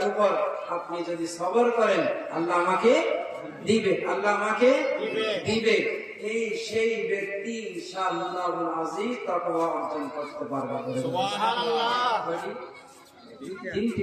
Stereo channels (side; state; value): both; identical; correlation 1.00